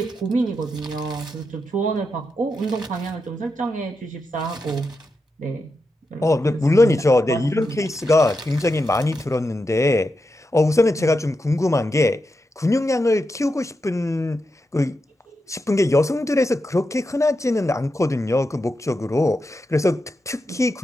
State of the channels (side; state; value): both; normal; correlation 0.87